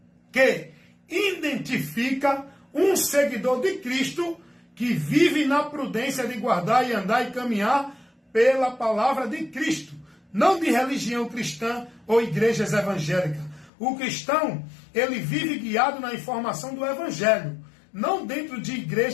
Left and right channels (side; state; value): right; drops out; at 13.7 s